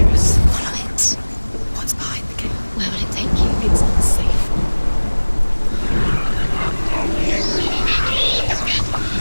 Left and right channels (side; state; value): both; inverted; correlation -1.00